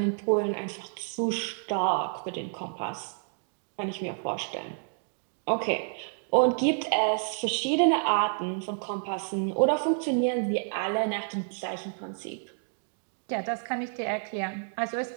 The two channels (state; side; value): silent; left; 58 dB below the other